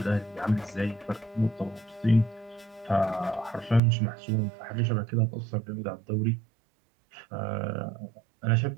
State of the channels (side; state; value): left; drops out; at 3.8 s